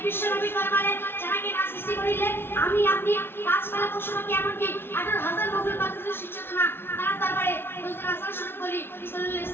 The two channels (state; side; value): late; right; 0.11 ms